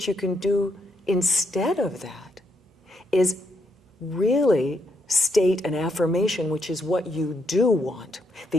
you can do instead of that is really state an affirmation, which is what you do want,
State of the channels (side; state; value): both; normal; correlation 0.77